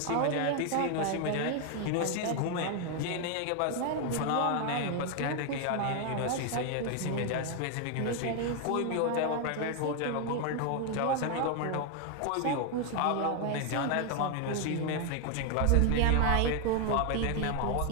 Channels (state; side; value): different; both; correlation 0.01